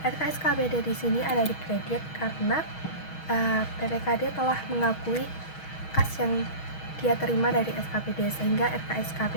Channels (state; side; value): late; right; 6.3 ms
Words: RKSKPD di sini ada di kredit karena PPKD telah mengakui kas yang dia terima dari SKPD, sehingga